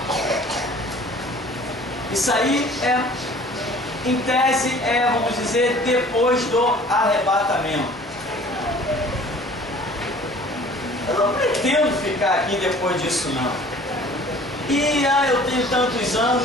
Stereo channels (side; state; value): both; normal; correlation 0.49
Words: isso aí é, em tese, vamos dizer, depois do arrebatamento. Eu não pretendo ficar aqui depois disso não. E eu tenho tantos